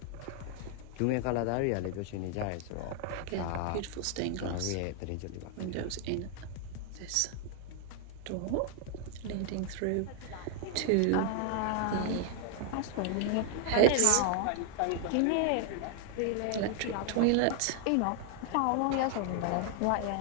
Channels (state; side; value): different; both; correlation 0.00